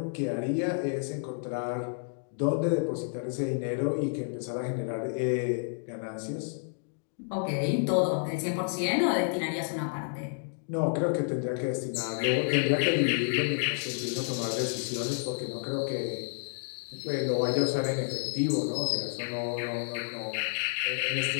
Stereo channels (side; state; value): right; silent; digital silence